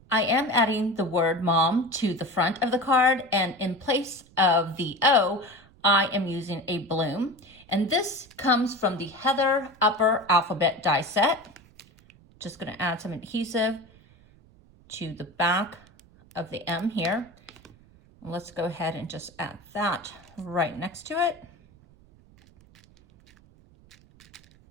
I am adding the word mom to the front of the card, and in place of the O, I am using a bloom. And this comes from the Heather Upper Alphabet die set. Just gonna add some adhesive to the back of the M here. Let's go ahead and just add that right next to it.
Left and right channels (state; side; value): noise; right; rumble, 27 dB below the sound